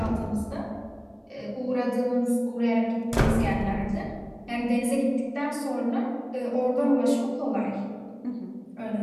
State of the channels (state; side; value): identical; both; correlation 1.00